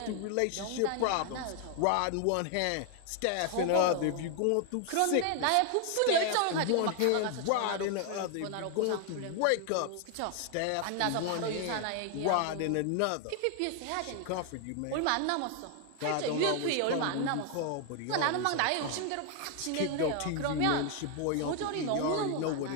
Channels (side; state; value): both; different; correlation 0.00